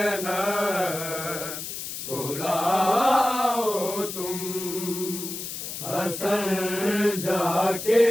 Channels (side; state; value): left; noise; hiss, 7 dB below the sound